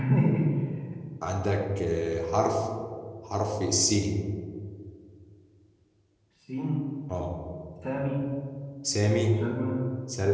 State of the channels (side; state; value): both; identical; correlation 1.00